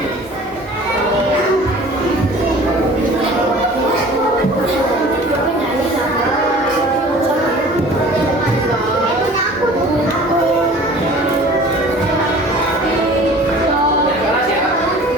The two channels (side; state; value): both; normal; correlation 0.45